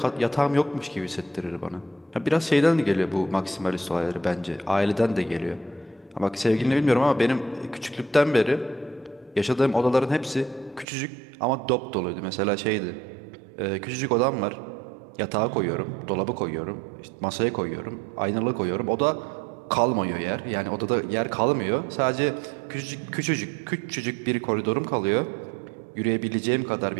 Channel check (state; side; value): drops out; left; at 10.9 s